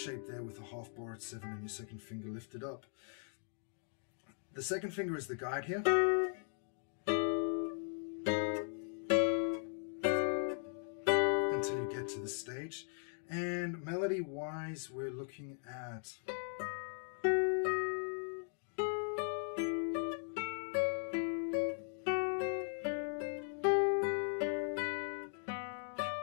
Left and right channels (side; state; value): right; silent; 52 dB below the other